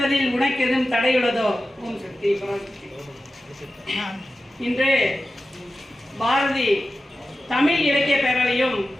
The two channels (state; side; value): normal; both; correlation 0.93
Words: உனக்கு எதுவும் தடையுள்ளதோ? ஓம் சக்தி பராசக்தி. இன்று பாரதி தமிழ் இலக்கிய பேரவையும்